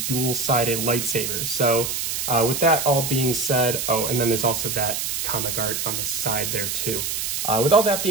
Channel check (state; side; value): noise; right; hiss, 2 dB below the sound